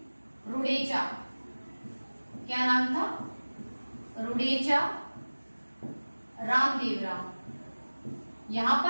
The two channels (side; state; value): both; inverted; correlation -1.00